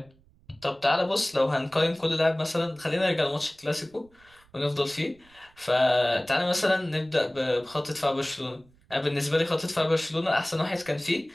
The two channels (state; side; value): noise; right; rumble, 30 dB below the sound